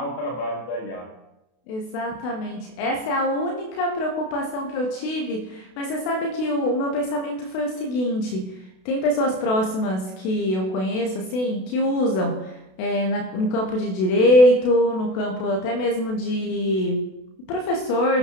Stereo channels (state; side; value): late; right; 32 ms